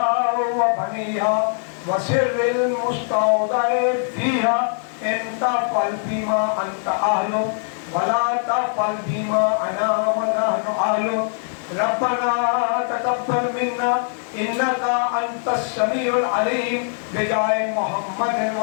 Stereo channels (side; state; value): right; silent; digital silence